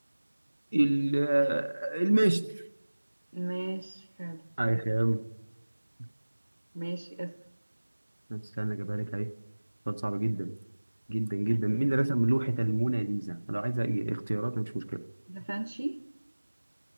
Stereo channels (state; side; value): inverted; both; correlation -1.00